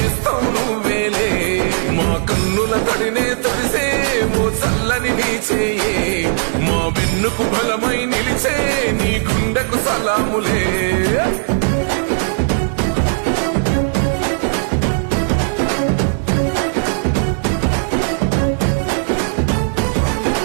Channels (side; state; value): left; silent; 67 dB below the other